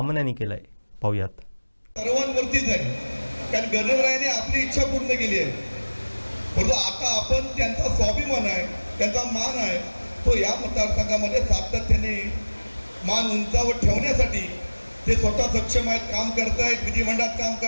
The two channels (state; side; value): inverted; both; correlation -1.00